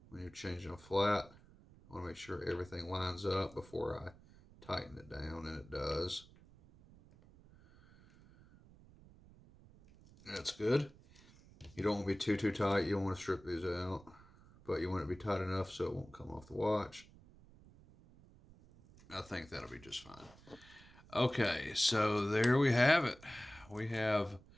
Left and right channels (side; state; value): right; noise; rumble, 23 dB below the sound